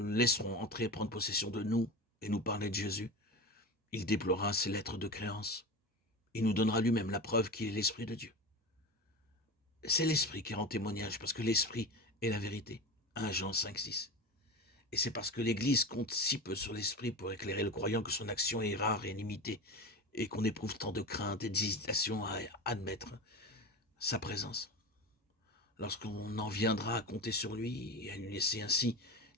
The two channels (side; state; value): both; normal; correlation 0.27